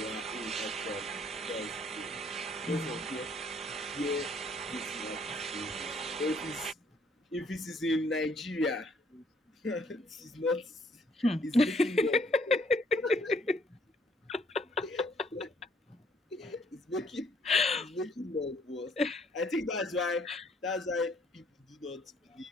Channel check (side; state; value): both; normal; correlation 0.64